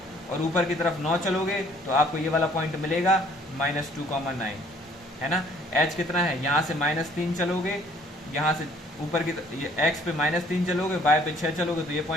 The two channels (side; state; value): both; normal; correlation 0.59